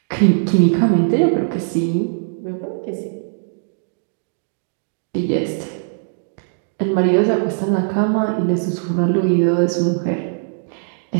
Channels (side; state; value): left; silent; digital silence